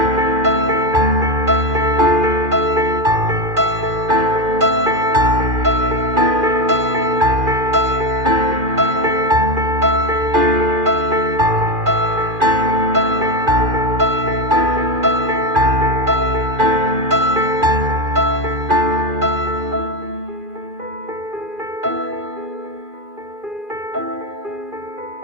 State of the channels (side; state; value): left; late; 2.4 ms